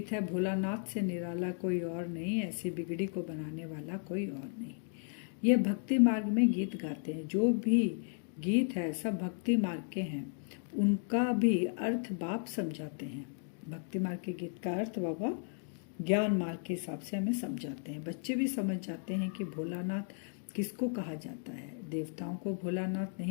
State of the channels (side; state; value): right; silent; 55 dB below the other